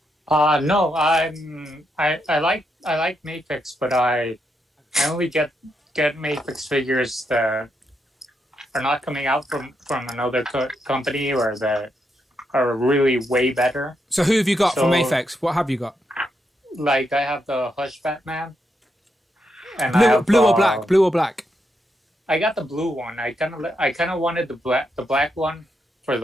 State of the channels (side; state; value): both; normal; correlation 0.81